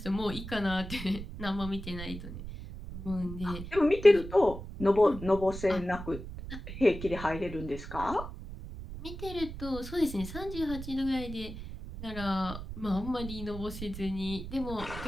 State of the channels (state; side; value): noise; right; rumble, 10 dB below the sound